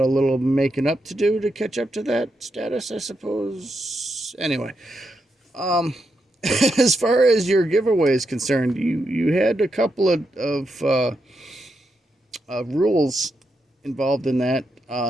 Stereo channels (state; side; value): normal; both; correlation 0.84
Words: little making up to do to catch up to that status, I suppose. Anyway, as far as your giveaway is concerned, you had a couple of rules involved in that.